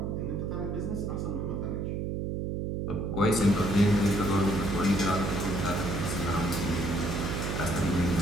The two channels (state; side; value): noise; right; hum, 2 dB below the sound